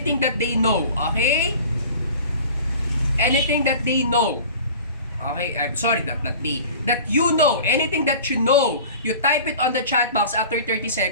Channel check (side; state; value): both; inverted; correlation -0.41